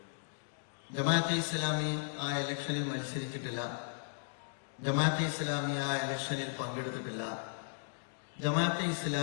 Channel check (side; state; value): right; silent; digital silence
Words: ജമാഅത്തെ ഇസ്ലാമി ആ ഇലക്ഷനിൽ മത്സരിച്ചിട്ടില്ല. ജമാഅത്തെ ഇസ്ലാമി ആ ഇലക്ഷനിൽ പങ്കെടുത്തിട്ടില്ല. ജമാഅത്തെ